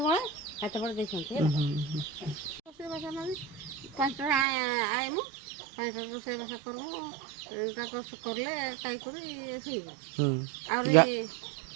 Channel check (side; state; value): left; drops out; at 4.5 s